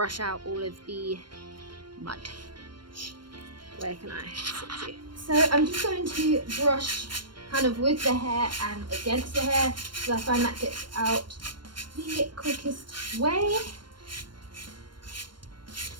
out all of the mud. Where can I sit you? So I'm just going to brush kind of with the hair and against the hair, because I find that gets out the quickest way.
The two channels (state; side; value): late; left; 0.72 ms